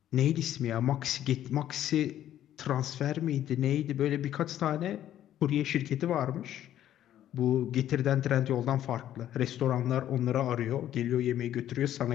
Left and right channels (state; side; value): quieter; right; 11.8 dB